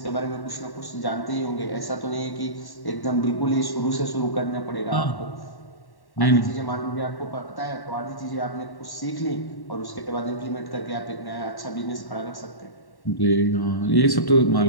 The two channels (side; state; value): right; late; 1.1 ms